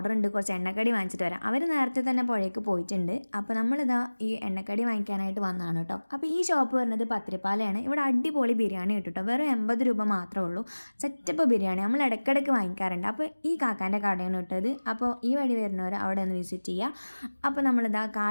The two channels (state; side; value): inverted; both; correlation -1.00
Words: ഉണ്ട്, കുറച്ച് എണ്ണക്കടി വാങ്ങിച്ചിട്ട് വരാം. അവർ നേരത്തെ തന്നെ പുഴയ്ക്ക് പോയിട്ടുണ്ട്. അപ്പോൾ നമ്മളിതാ ഈ എണ്ണക്കടി വാങ്ങിക്കാനായിട്ട് വന്നതാണ് കേട്ടോ. അപ്പോൾ ഈ ഷോപ്പ് വരുന്നത് പത്തിരിപ്പാലയാണ്. ഇവിടെ അടിപൊളി ബിരിയാണി കിട്ടും കേട്ടോ. വെറും 80 രൂപ മാത്രമേ ഉള്ളൂ. സെറ്റപ്പ് ബിരിയാണി നമ്മൾ ഇടയ്ക്കിടയ്ക്ക് വാങ്ങിക്കാറുണ്ട്. അപ്പോൾ ഈ കാക്കാൻ്റെ കടയാണ് കിട്ടത്. അപ്പോൾ ഈ വഴി വരുന്നവർ അവിടെ ഒന്ന് വിസിറ്റ് ചെയ്യുക. അപ്പോൾ നമ്മളിതാ